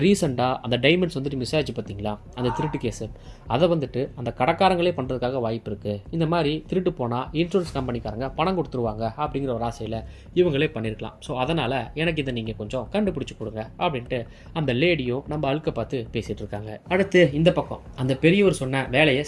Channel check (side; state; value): both; identical; correlation 1.00